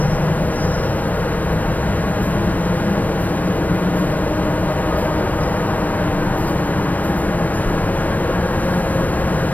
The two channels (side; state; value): right; late; 0.079 ms